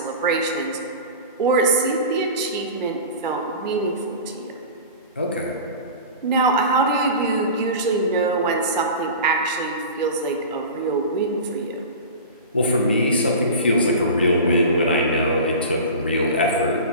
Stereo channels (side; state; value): both; inverted; correlation -0.32